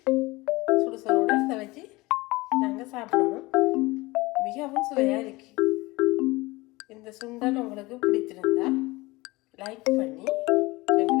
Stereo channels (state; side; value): quieter; right; 21.9 dB